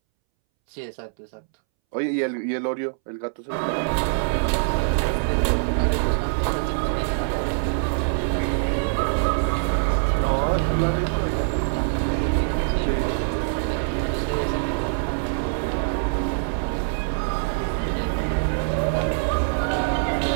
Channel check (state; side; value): silent; left; 63 dB below the other